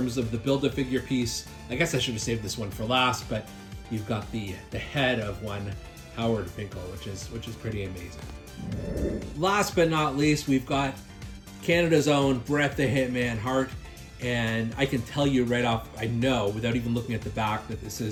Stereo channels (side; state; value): both; identical; correlation 1.00